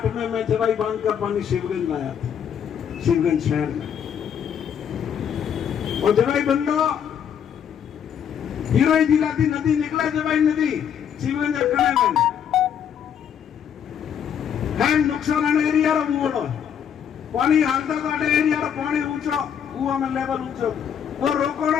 में मैं जवाई बांध का पानी शिवगंज लाया था, शिवगंज शहर में, और जवाई बंदो हीरोई जिला थी नदी निकला जवाई नदी शिवगंज अखड़े में है नुकसान एरिया रो मोड़ो पानी हालता तो अटे एरिया रो पानी ऊंचो कुआं में लेवल ऊंचो वो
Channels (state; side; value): quieter; right; 8.5 dB